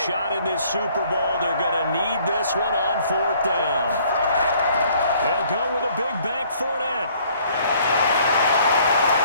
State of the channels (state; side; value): inverted; both; correlation -0.60